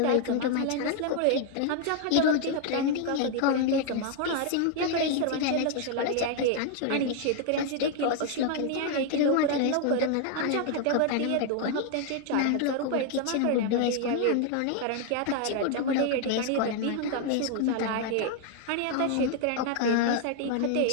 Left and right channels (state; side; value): different; both; correlation 0.00